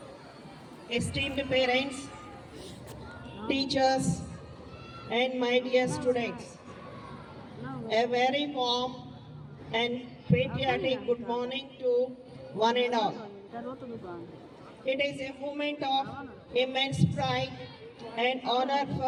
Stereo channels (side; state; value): both; identical; correlation 1.00